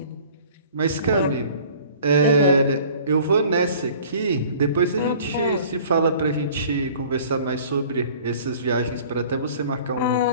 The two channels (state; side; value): inverted; both; correlation -0.49